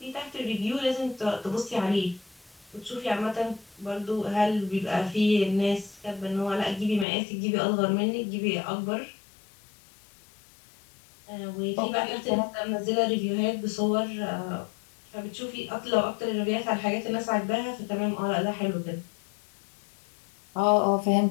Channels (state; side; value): drops out; right; at 7.1 s